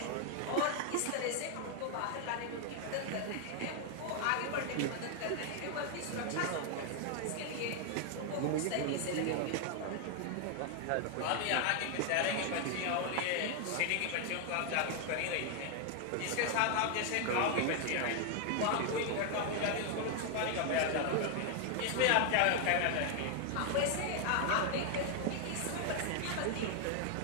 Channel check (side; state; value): both; different; correlation 0.00